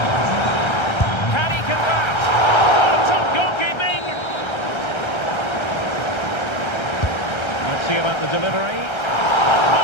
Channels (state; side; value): late; right; 1.3 ms